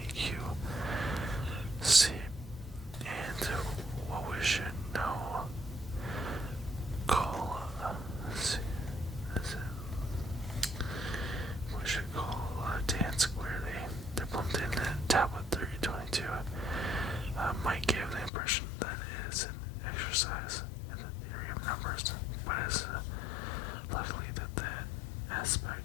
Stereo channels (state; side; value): drops out; right; at 18.3 s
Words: Q, C, and what we should now call tan squared A. The Plimpton tablet 322 might give the impression that it is an exercise in the theory of numbers, but it's likely that the